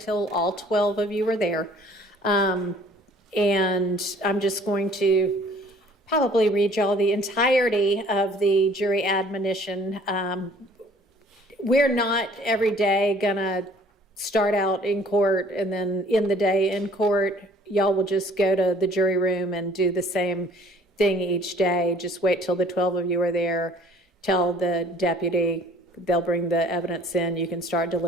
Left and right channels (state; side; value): normal; both; correlation 0.54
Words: all 12 of you are there. And I'm just going to probably read y'all the entirety of the jury admonition. We're not every day gonna start out in court and then end the day in court. Y'all will just go to the jury room and do the same thing each day. Just wait till the 12 of you are there. Tell the deputy, they'll bring the evidence in. You can start